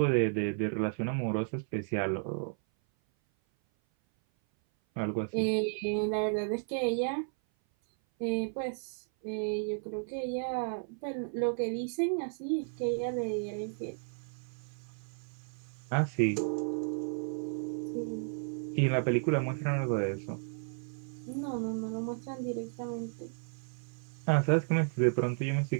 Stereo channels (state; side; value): silent; left; 56 dB below the other